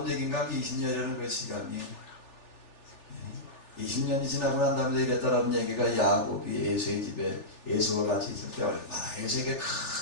얘기인가? 20년이라는 그 시간이 20년이 지나고 난 다음에 이랬다라는 얘기가 야곱이 에서의 집에 에서와 같이 있을 때 얼마나 에서에게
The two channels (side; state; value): right; late; 3.4 ms